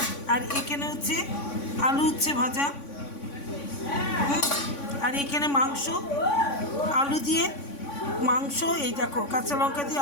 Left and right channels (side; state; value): right; late; 3.5 ms